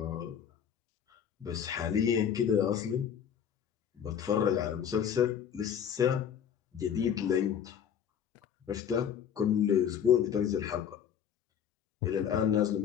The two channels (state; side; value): quieter; right; 8.6 dB